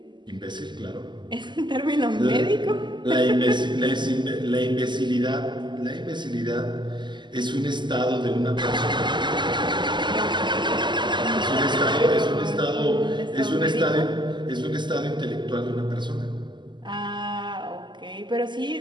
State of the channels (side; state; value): left; late; 0.22 ms